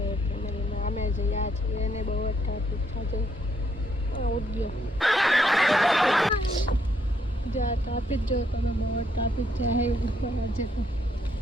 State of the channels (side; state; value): both; normal; correlation 0.73